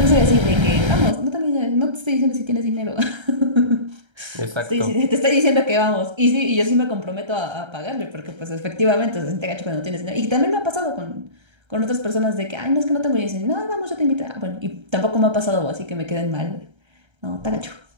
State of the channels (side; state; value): left; late; 1.3 ms